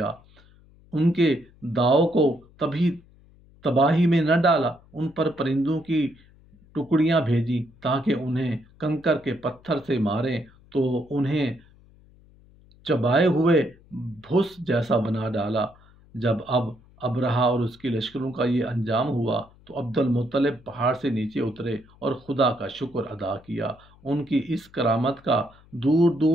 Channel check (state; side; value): noise; left; hum, 27 dB below the sound